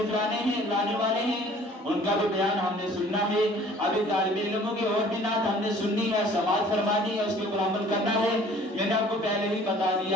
لانے والے ہیں، ان کا بھی بیان ہم نے سننا ہے. ابھی طالب علموں کی اور بھی نعت ہم نے سننی ہے، سماعت فرمانی ہے، اس کے اوپر عمل کرنا ہے. میں نے آپ کو پہلے ہی بتا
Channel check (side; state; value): both; normal; correlation 0.52